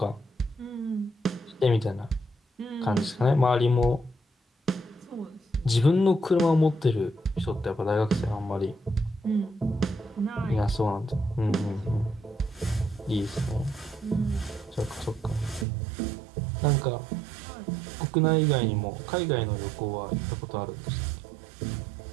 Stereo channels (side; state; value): left; drops out; at 15.7 s